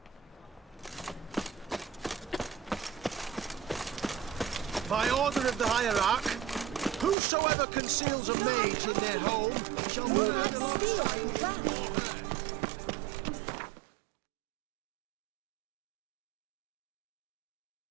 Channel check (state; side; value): drops out; left; at 7.2 s